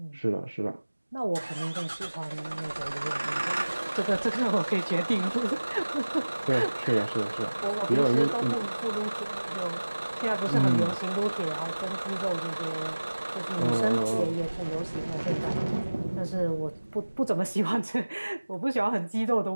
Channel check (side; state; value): both; inverted; correlation -1.00